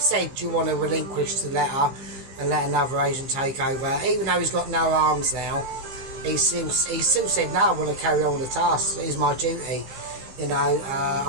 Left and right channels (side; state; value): left; late; 15 ms